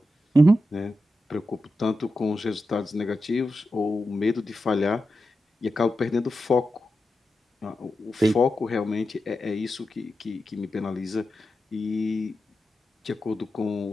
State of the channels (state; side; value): normal; both; correlation 0.90